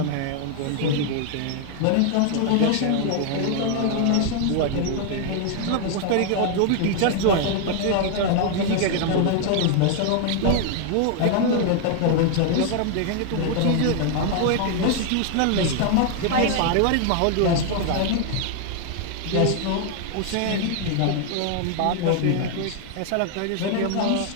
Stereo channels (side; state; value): both; different; correlation 0.00